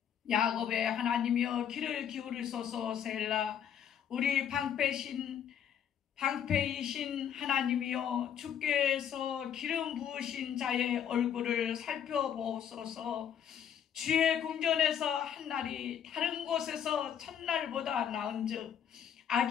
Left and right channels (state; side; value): quieter; right; 8.9 dB